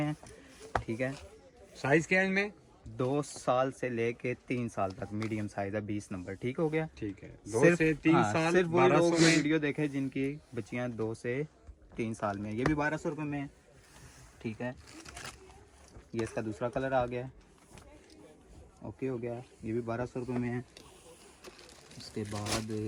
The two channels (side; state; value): both; identical; correlation 1.00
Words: है। ठीक है, साइज क्या है इनमें? 2 साल से लेके 3 साल तक मीडियम साइज है, 20 नंबर। ठीक हो गया। ठीक है, 2 से 3 साल सिर्फ वही लोग 1200 में। वीडियो देखे जिनकी बच्चियाँ 2 से 3 साल में। ये भी 1200 रुपये में है। ठीक है, ये इसका दूसरा कलर आ गया। ओके हो गया, ये भी 1200 रुपये में है। उसके बाद